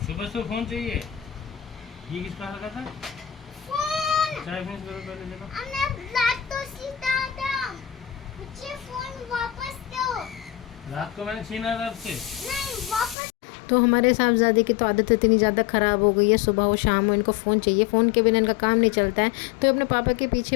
सुबह से फोन चाहिए। ये किसका लगा था? फोन। चाय फिनिश करो पहले। देखो हमने रात तो सीता था, मुझे फोन वापस दो। रात को मैंने छीना था आपसे। नहीं, वापस। तो हमारे साहबजादे की तो आदत इतनी ज़्यादा ख़राब हो गई है, सुबह हो शाम हो इनको फ़ोन चाहिए। फ़ोन के बिना इनका काम नहीं चलता है। तो अपने पापा के पीछे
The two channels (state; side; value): drops out; right; at 13.2 s